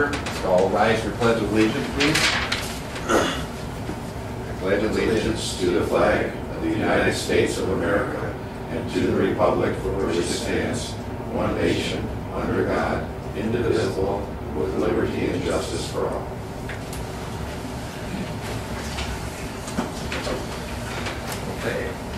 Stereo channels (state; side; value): identical; both; correlation 1.00